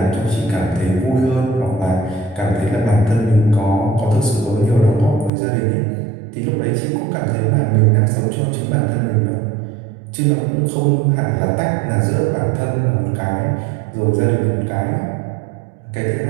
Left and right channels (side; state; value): left; drops out; at 5.3 s